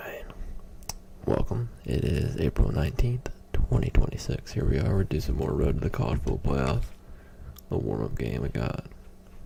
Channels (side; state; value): both; identical; correlation 1.00